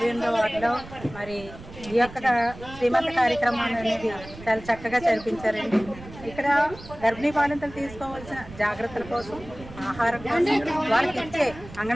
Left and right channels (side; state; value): right; noise; rumble, 16 dB below the sound